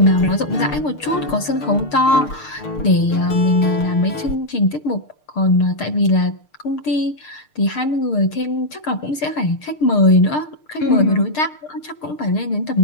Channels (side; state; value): right; late; 6.6 ms